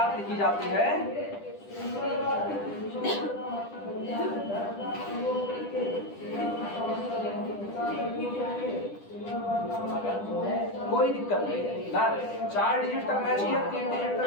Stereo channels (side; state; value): right; late; 10 ms